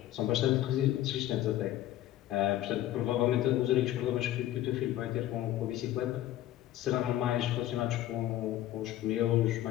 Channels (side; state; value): right; quieter; 13.6 dB